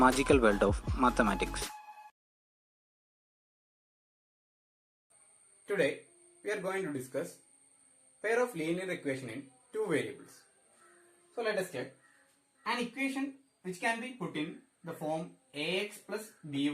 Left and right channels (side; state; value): both; identical; correlation 1.00